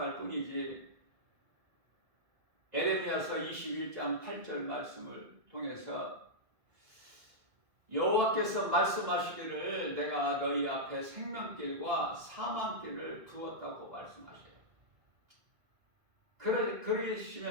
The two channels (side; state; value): left; late; 2.0 ms